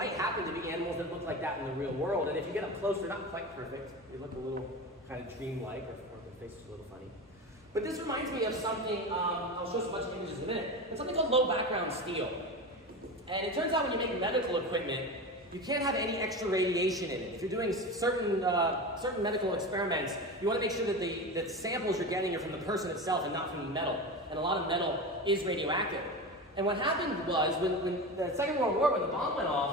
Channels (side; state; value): both; normal; correlation 0.25